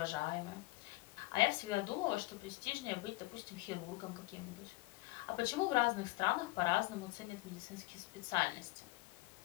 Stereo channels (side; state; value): right; quieter; 20.3 dB